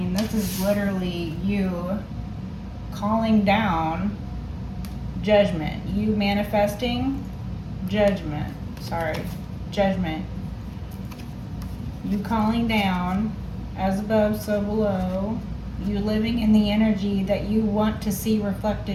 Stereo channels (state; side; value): identical; both; correlation 1.00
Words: this is literally you calling down judgment. You manifesting judgment. Sorry, judgment. You calling down, as above, so below. You living in the energy that you want to see